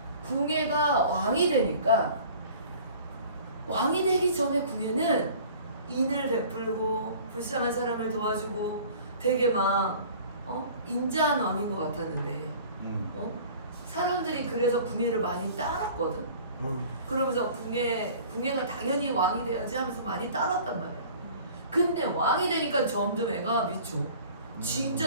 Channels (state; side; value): inverted; both; correlation -0.47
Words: 궁예가 왕이 되니까 왕이 되기 전에 궁예는 인을 베풀고 불쌍한 사람을 도와주고 되게 막 인자한 왕인 것 같았는데 사람들이 그래서 궁예를 많이 따랐거든. 그러면서 궁예가 당연히 왕이 돼야지 하면서 많이 따랐단 말이야. 근데 왕이 되니까 점점 애가 미쳐.